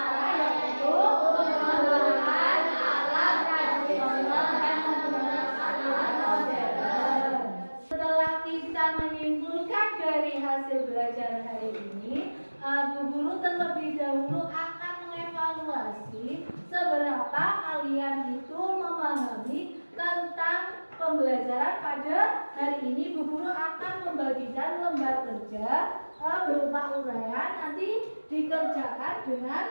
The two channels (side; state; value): both; inverted; correlation -1.00